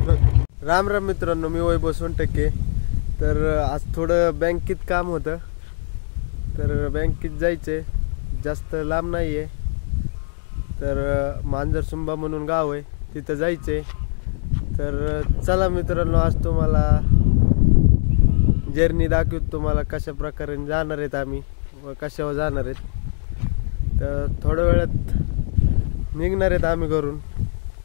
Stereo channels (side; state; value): right; silent; digital silence